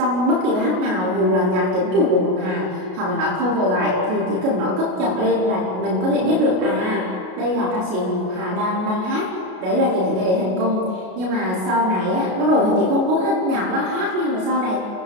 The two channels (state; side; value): late; left; 33 ms